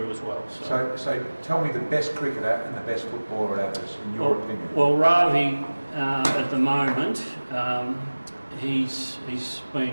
as well. So tell me the best cricketer and the best footballer at Abers, in your opinion. Well, Ravi, at the moment, he's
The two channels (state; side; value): inverted; both; correlation -1.00